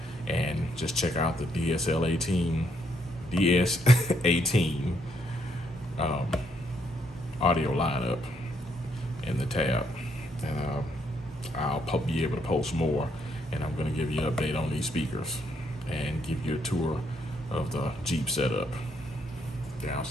and just check out the Ds18 audio lineup in the tab, and I'll be able to post more, and I'm going to give you an update on these speakers and give you a tour of the Jeep setup. Down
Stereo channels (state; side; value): normal; both; correlation 0.74